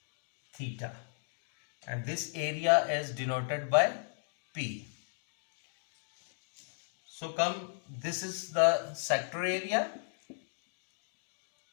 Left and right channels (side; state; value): right; silent; digital silence